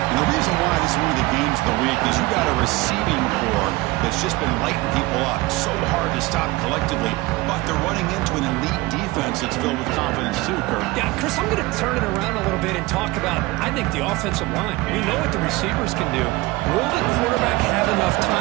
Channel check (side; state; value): left; quieter; 21.0 dB